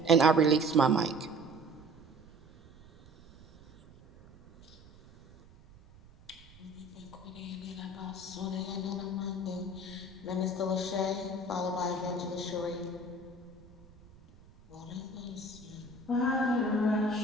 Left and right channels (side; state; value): right; noise; rumble, 24 dB below the sound